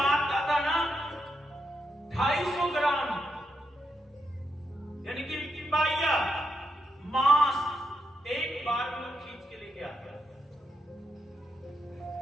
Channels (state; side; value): normal; both; correlation 0.82